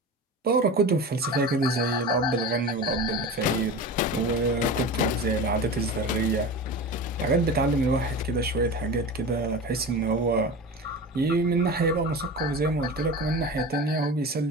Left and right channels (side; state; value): both; normal; correlation 0.30